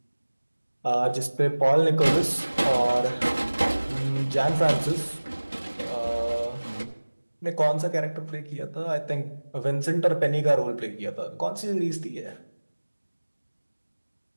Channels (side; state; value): both; inverted; correlation -1.00